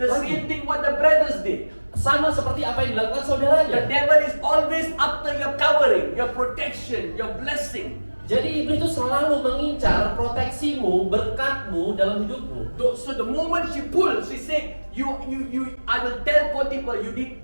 The same thing what the brothers did. Sama seperti apa yang dilakukan The saudaranya. devil is always after your covering, your protection, your blessing. Jadi iblis itu selalu mengincar proteksimu, berkatmu dalam hidupmu. So the moment she pulled, she said, I will tell Potiphar you did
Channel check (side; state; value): both; inverted; correlation -1.00